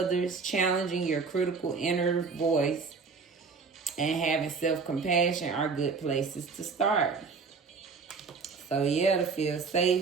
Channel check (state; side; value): quieter; left; 4.9 dB